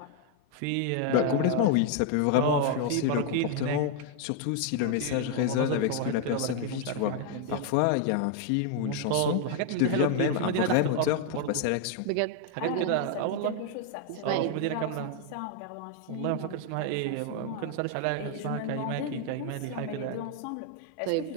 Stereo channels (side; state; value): both; different; correlation 0.00